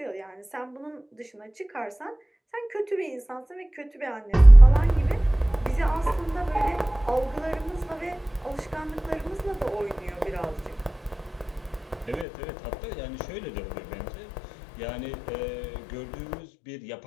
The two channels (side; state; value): right; drops out; at 12.2 s